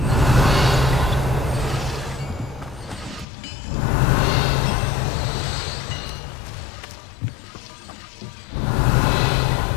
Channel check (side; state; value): right; drops out; at 3.2 s